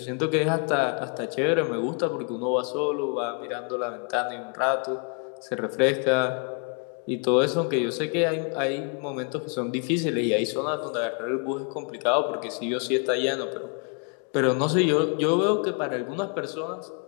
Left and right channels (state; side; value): quieter; right; 38.2 dB